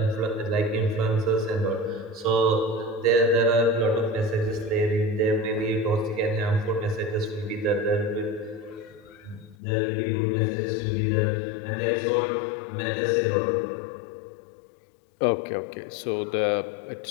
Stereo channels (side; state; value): right; drops out; at 9.6 s